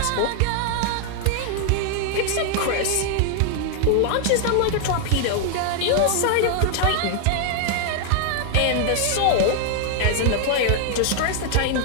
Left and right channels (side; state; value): both; different; correlation 0.00